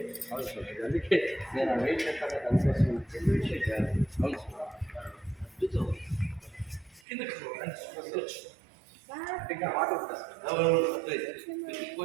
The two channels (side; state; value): left; drops out; at 7.0 s